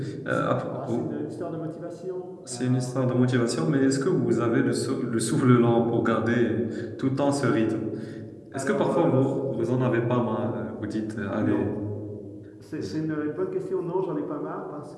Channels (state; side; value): identical; both; correlation 1.00